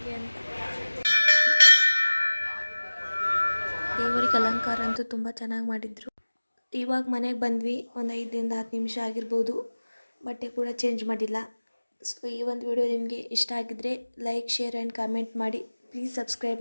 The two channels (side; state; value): both; inverted; correlation -1.00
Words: ಅಂತ. ದೇವರಿಗೆ ಅಲಂಕಾರ ಅಂತೂ ತುಂಬ ಚೆನ್ನಾಗಿ ಮಾಡಿದರು. ಇವಾಗ ಮನೆಗೆ ಬಂದ್ವಿ, ಒಂದು 5ರಿಂದ 10 ನಿಮಿಷ ಆಗಿರ್ಬೋದು. ಬಟ್ಟೆ ಕೂಡ ಚೇಂಜ್ ಮಾಡಿಲ್ಲ. ಸೊ ಈ ಒಂದು ವಿಡಿಯೋ ನಿಮಗೆ ಇಷ್ಟ ಆಗಿದ್ದರೆ ಲೈಕ್, ಶೇರ್ ಆ್ಯಂಡ್ ಕಾಮೆಂಟ್ ಮಾಡಿ. ಪ್ಲೀಸ್ ಸಬ್ಸ್ಕ್ರೈಬ್